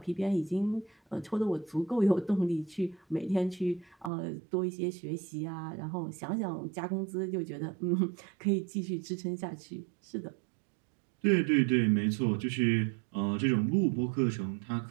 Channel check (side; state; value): left; drops out; at 4.1 s